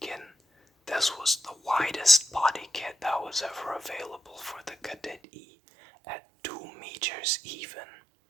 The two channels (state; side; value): drops out; left; at 5.2 s